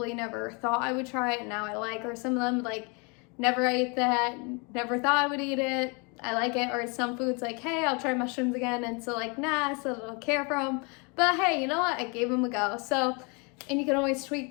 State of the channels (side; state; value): right; quieter; 32.2 dB